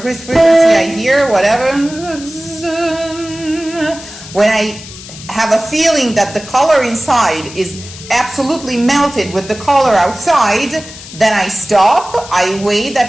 I hear, whatever. When I have a feeling that the color inside is absolutely melted with the color outside, then I stop, I weigh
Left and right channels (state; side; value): noise; left; hiss, 15 dB below the sound